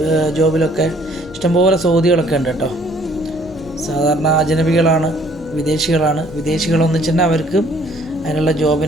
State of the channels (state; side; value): noise; left; hum, 19 dB below the sound